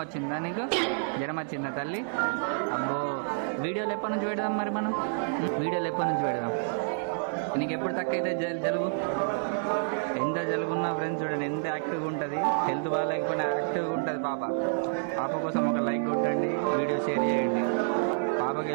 వచ్చిందా నీకు? జ్వరం వచ్చిందా తల్లి? అబ్బో, వీడియోలు ఎప్పటి నుంచి పెడదాం మరి మనం? వీడియోలు ఎప్పటి నుంచి పెడదాం? నీకు ఎప్పుడు తక్కువైతే జలుబు? ఎంత జలుబు ఉన్నా ఫ్రెండ్స్ చూడండి ఎంత యాక్టివ్గా ఉంటుంది. హెల్త్ బాగాలేకపోయినా యాక్టివ్గా ఉంటుంది పాప. పాప కోసం ఒక లైక్ కొట్టండి, వీడియో షేర్ చేయండి. పాపకి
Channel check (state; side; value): silent; left; 59 dB below the other